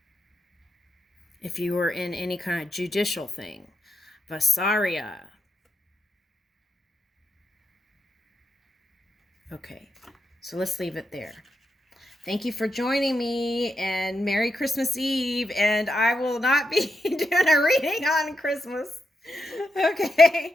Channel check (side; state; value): both; normal; correlation 0.85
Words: If you were in any kind of judicial thing. Vasaria. Okay, so let's leave it there. Thank you for joining me, and Merry Christmas Eve, and I will not be doing a reading on Christmas. Okay,